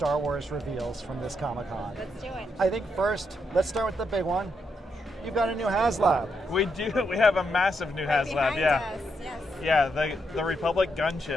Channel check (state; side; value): normal; both; correlation 0.80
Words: Wars reveals from this Comic-Con. Let's do it. I think first, let's start with the big one. You've got a new HasLab. We do. We have a massive new Right HasLab. behind Yeah. us, yes. Yeah. The Republic